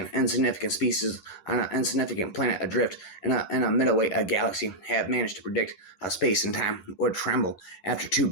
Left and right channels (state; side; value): late; right; 11 ms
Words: insignificant species on an insignificant planet adrift in a middleweight galaxy, have managed to predict how space and time would tremble after two